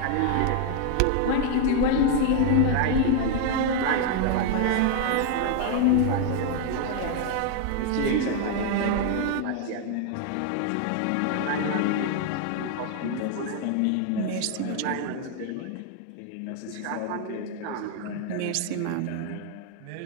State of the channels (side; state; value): both; different; correlation 0.00